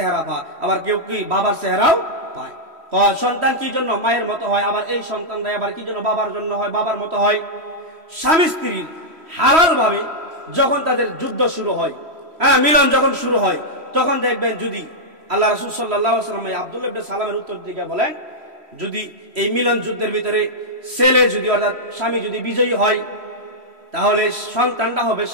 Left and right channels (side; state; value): left; late; 3.1 ms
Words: পায়, আবার কেউ কি বাবার চেহারাও পায়। সন্তান কি জন্য মায়ের মতো হয়, আবার এই সন্তানরা আবার কি জন্য বাবার জন্য হয়, বাবার মতো হয়। স্বামী স্ত্রীর হালাল ভাবে যখন তাদের যুদ্ধ শুরু হয়, মিলন যখন শুরু হয়, তখন দেখবেন যদি আল্লাহ রাসূল সাল্লাল্লাহু আলাইহি ওয়াসাল্লাম আব্দুল্লাহ ইবনে সালামের উত্তর দিকে বলেন, যদি এই মিলন যুদ্ধের ভিতরে ছেলে যদি অর্থাৎ স্বামী যদি বিজয়ী হয়, তাহলে সন্তানটা হবে